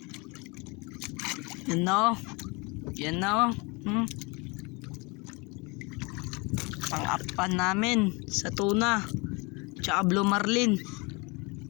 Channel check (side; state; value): right; quieter; 28.0 dB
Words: Yan na oh. Yan na oh. Pang-apan namin sa tuna tsaka blue marlin.